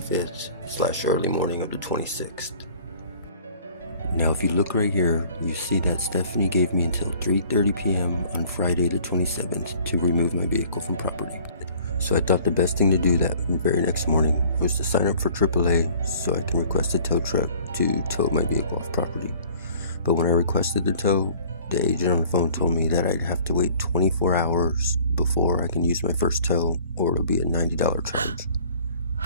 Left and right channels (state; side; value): inverted; both; correlation -0.52